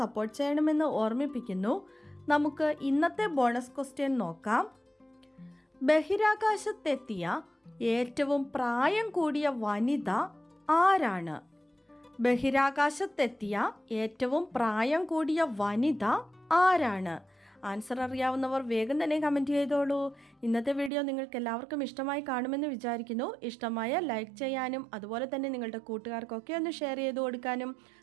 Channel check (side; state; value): left; drops out; at 20.9 s